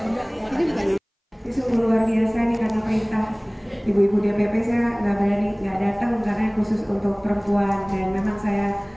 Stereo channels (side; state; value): both; identical; correlation 1.00